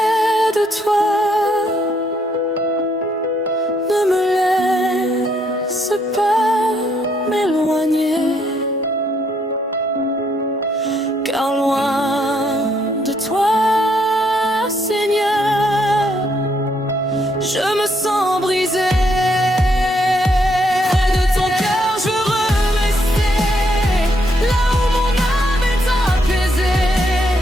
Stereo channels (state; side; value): normal; both; correlation 0.73